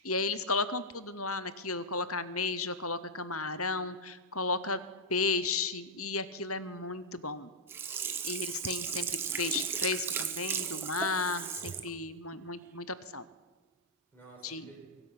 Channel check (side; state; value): both; normal; correlation -0.06